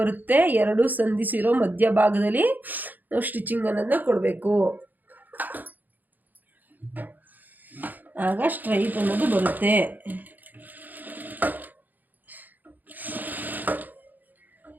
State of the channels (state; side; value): late; left; 0.084 ms